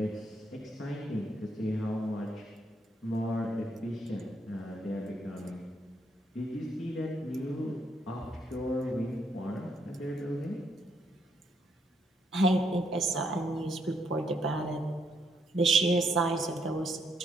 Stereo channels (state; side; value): normal; both; correlation 0.74